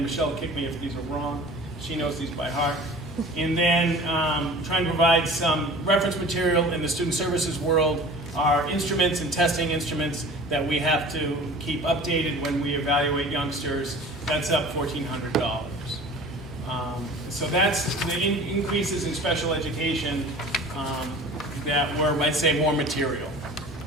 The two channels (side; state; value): both; normal; correlation 0.42